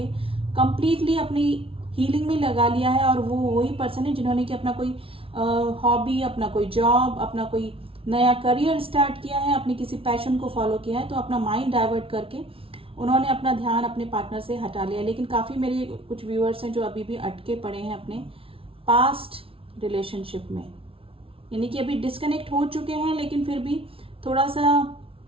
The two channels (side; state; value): left; late; 0.26 ms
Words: कंप्लीटली अपनी हीलिंग में लगा लिया है, और वो वही पर्सन है जिन्होंने कि अपना कोई हॉबी, अपना कोई जॉब, अपना कोई नया करियर स्टार्ट किया है, अपनी किसी पैशन को फॉलो किया है, तो अपना माइंड डाइवर्ट करके उन्होंने अपना ध्यान अपने पार्टनर से हटा लिया। लेकिन काफ़ी मेरे कुछ व्यूअर्स हैं जो अभी भी अटके पड़े हैं अपने पास्ट रिलेशनशिप में, यानी कि अभी डिस्कनेक्ट हो चुके हैं, लेकिन फिर भी थोड़ा सा